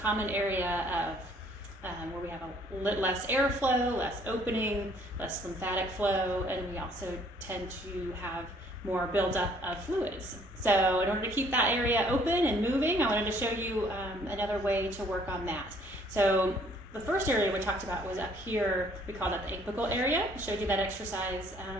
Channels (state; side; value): normal; both; correlation 0.61